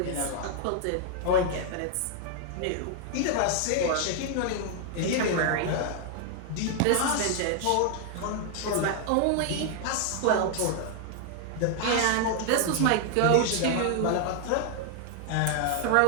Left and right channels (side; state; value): both; different; correlation 0.00